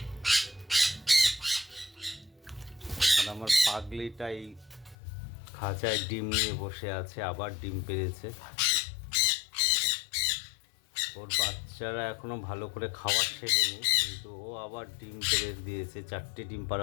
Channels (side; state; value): right; drops out; at 5.0 s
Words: আর আমার পাগলিটাই খাঁচায় ডিম নিয়ে বসে আছে, আবার ডিম পেড়েছে। ওর বাচ্চারা এখনো ভালো করে খাবার শেখেনি, কিন্তু ও আবার ডিম পেড়ে দিয়েছে, 4টে ডিম